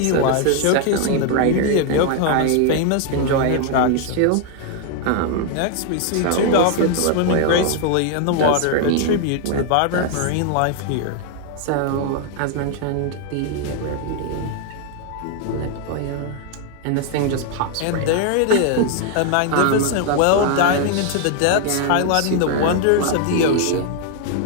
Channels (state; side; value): different; both; correlation 0.00